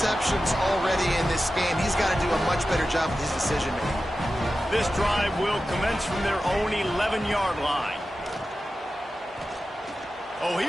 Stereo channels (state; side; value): normal; both; correlation 0.93